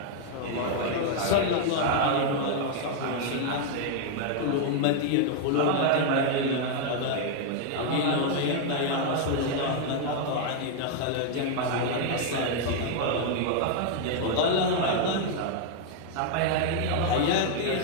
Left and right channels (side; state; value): both; different; correlation 0.00